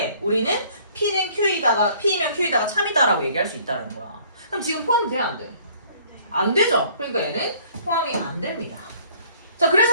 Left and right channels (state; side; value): inverted; both; correlation -0.57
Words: 우리는 P는 P이면 Q에다가 참이다라고 얘기할 수 있다는 거야. 그럼 지금 포함돼야 안 돼? 안 되죠. 그러니까 얘는 포함이 안 됩니다. 자,